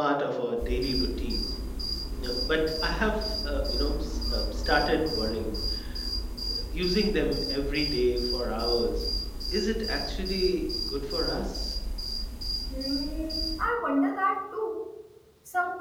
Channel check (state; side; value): identical; both; correlation 1.00